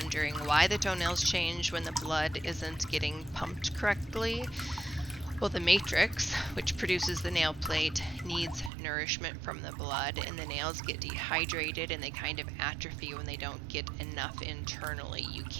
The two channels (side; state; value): left; drops out; at 8.7 s